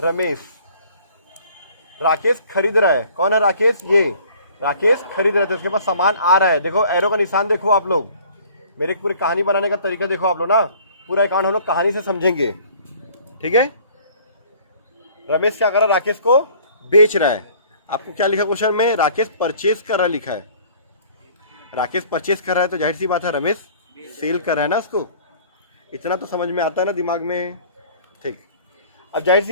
राकेश खरीद रहा है। कौन है राकेश? ये राकेश खरीद रहे थे, उसके पास सामान आ रहा है। देखो एरो का निशान देखो आप लोग, मेरी पूरी कहानी बनाने का तरीका देखो आप लोग ना, पूरा अकाउंट हम लोग कहानी से समझेंगे, ठीक है। रमेश क्या कर रहा है? राकेश को बेच रहा है। आपको क्या लिखा क्वेश्चन में? राकेश परचेज कर रहा लिखा है। राकेश परचेज कर रहा है तो जाहिर सी बात है रमेश सेल कर रहा है ना उसको। इतना तो समझ में आता है ना दिमाग में, ठीक। अब जाहिर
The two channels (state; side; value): inverted; both; correlation -0.53